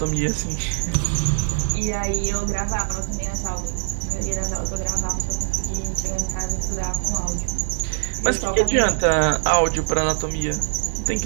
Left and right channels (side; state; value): left; silent; digital silence